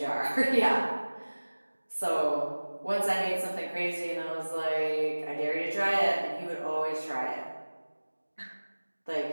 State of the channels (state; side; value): inverted; both; correlation -1.00